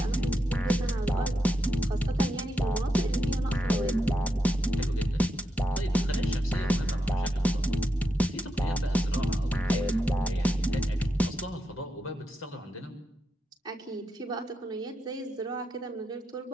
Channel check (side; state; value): both; normal; correlation 0.84